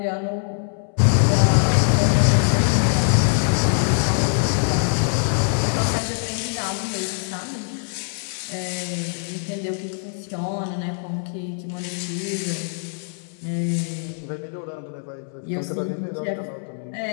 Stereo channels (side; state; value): right; silent; 63 dB below the other